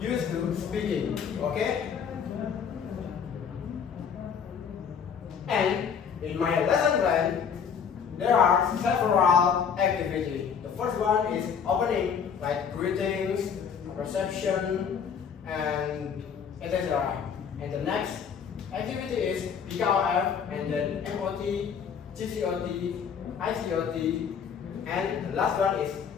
to speaking, okay? And in my lesson plan, there are several activities. The first one is opening, like greetings, reception, and etc. And the next activity is PKOF, and then MOT, GCOT, ICOT, and the last one is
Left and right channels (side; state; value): right; quieter; 7.0 dB